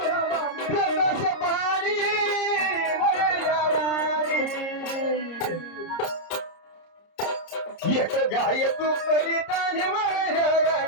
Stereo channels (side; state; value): right; late; 30 ms